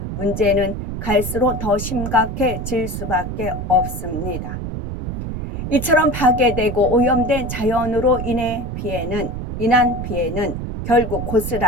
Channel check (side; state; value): right; noise; rumble, 5 dB below the sound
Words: 문제는 갈수록 더 심각해질 수밖에 없습니다. 이처럼 파괴되고 오염된 자연으로 인한 피해는 결국